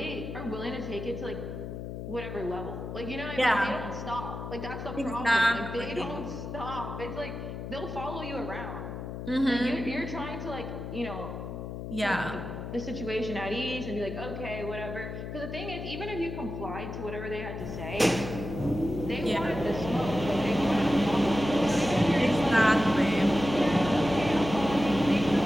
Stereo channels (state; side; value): noise; left; hum, 7 dB below the sound